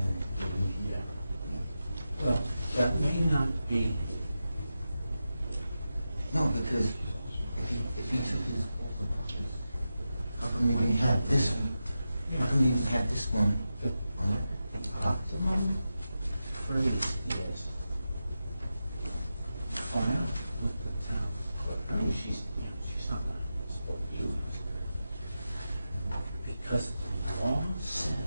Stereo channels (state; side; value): inverted; both; correlation -0.91